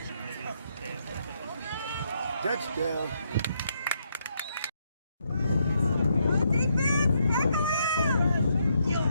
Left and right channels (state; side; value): inverted; both; correlation -0.76